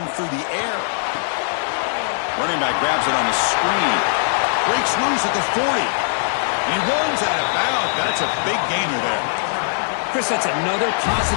through the air. Running back grabs it on the screen. Breaks loose at the 40. He runs out of bounds. That's a big gainer there. Chris, that's another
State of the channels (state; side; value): silent; right; digital silence